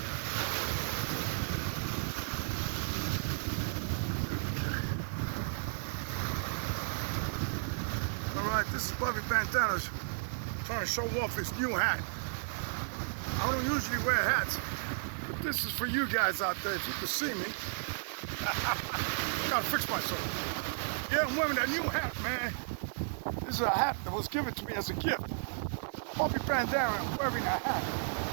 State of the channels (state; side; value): silent; left; 55 dB below the other